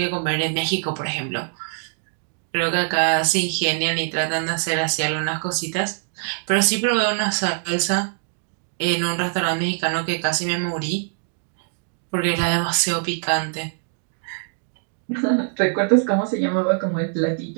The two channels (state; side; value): silent; left; digital silence